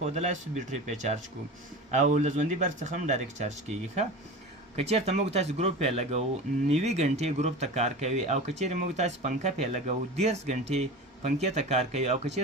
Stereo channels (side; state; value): both; normal; correlation 0.31